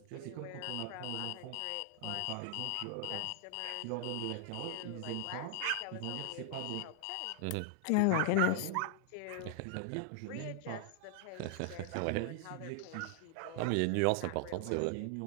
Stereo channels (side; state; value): both; different; correlation 0.00